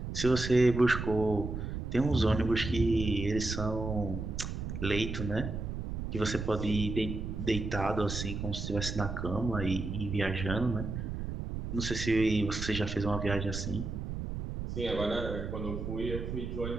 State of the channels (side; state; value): right; noise; rumble, 5 dB below the sound